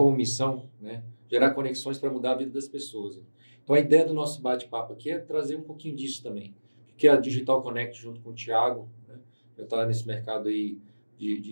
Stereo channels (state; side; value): inverted; both; correlation -1.00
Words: missão, né, gerar conexões para mudar a vida das pessoas. Então a ideia do nosso bate-papo aqui é trazer um pouquinho disso também, que é a Digital Connect junto com o Thiago, né, já está nesse mercado aí